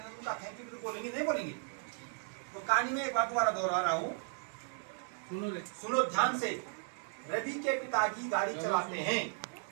हैं उनका थैंक यू भी बोलेंगे, नहीं बोलेंगे? तो कहानी में एक बार दोबारा दोहरा रहा हूँ, सुनो ध्यान से। रवि के पिताजी गाड़ी चलाते हैं।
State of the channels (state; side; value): silent; left; 54 dB below the other